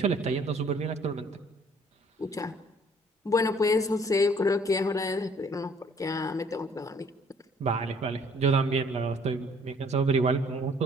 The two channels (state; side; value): normal; both; correlation 0.59